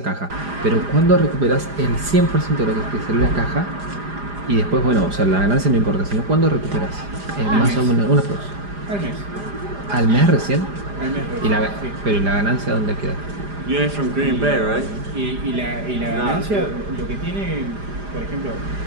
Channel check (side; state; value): left; late; 4.9 ms